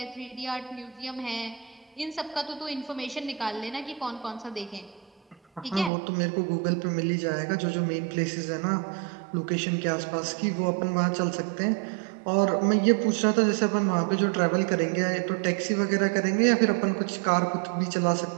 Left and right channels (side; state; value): left; drops out; at 5.9 s